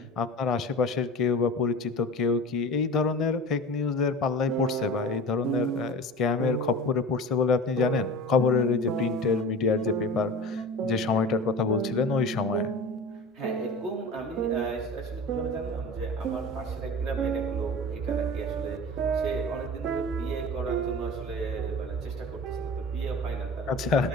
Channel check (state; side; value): normal; both; correlation 0.35